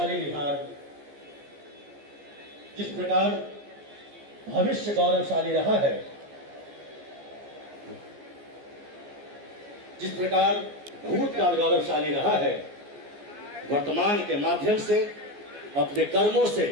बिहार, जिस प्रकार भविष्य गौरवशाली रहा है, जिस प्रकार भूतकाल गौरवशाली रहा है, वर्तमान के माध्यम से अपने कर्मों से,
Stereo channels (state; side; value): late; left; 14 ms